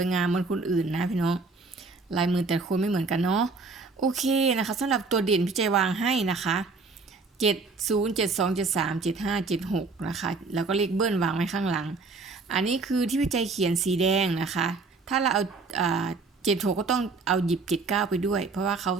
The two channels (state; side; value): quieter; left; 4.0 dB